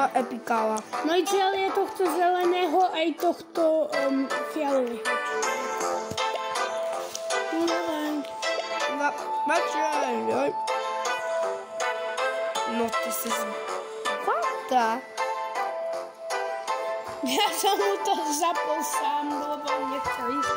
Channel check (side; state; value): both; identical; correlation 1.00